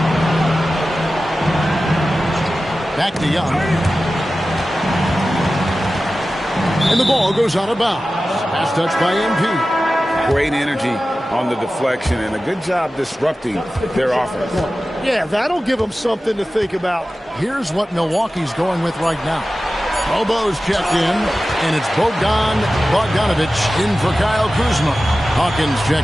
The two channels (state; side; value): normal; both; correlation 0.95